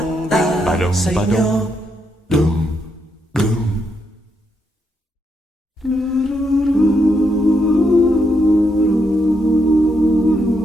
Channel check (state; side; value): normal; both; correlation 0.79